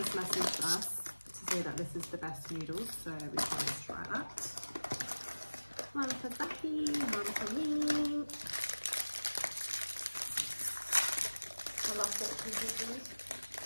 messaged us to say that this is the best noodles, so we can try that. One for Becky, one for me. I love fortune cookies.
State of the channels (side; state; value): both; inverted; correlation -1.00